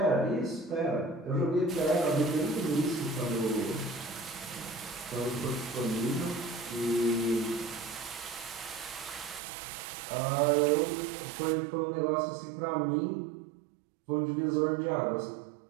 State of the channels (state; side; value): drops out; left; at 9.4 s